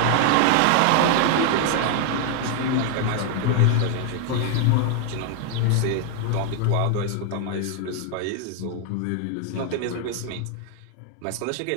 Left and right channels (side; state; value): both; different; correlation 0.00